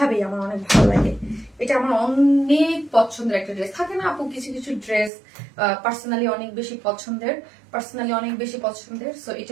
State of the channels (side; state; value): left; drops out; at 5.1 s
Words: আমার অনেক ভালো লাগে। এটা আমার অনেক পছন্দের একটা ড্রেস। থাকে না আপু কিছু কিছু ড্রেস পার্সোনালি অনেক বেশি পছন্দের, সো এটা